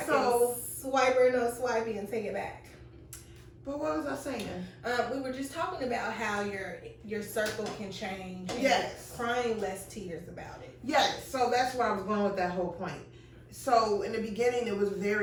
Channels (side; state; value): both; identical; correlation 1.00